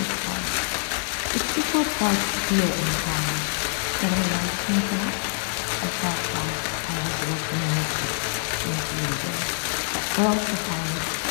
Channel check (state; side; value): silent; right; 61 dB below the other